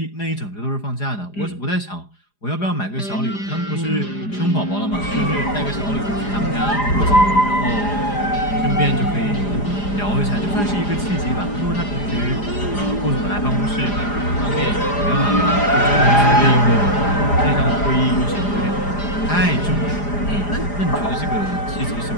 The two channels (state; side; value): late; right; 4.9 ms